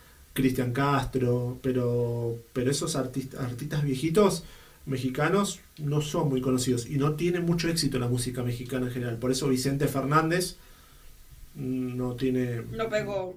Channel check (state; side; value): identical; both; correlation 1.00